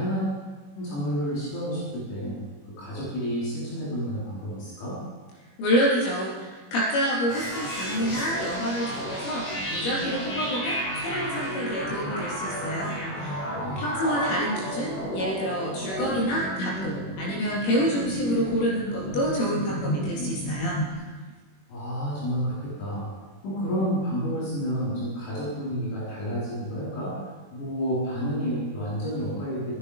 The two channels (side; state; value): right; late; 21 ms